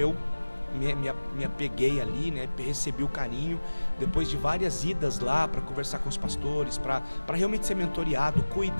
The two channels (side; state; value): both; inverted; correlation -1.00